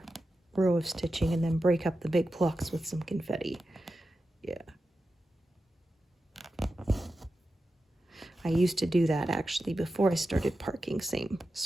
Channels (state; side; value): normal; both; correlation 0.91